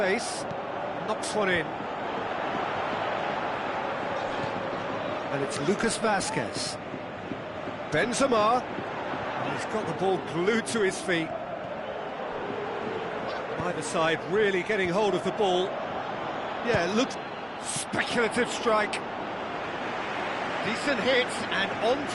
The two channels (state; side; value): identical; both; correlation 1.00